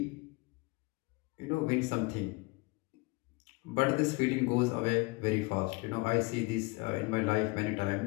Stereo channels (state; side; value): quieter; right; 25.3 dB